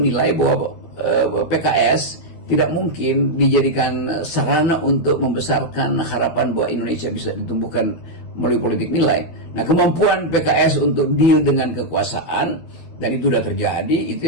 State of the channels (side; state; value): right; late; 13 ms